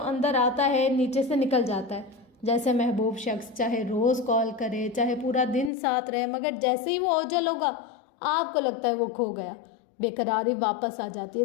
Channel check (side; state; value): right; drops out; at 5.7 s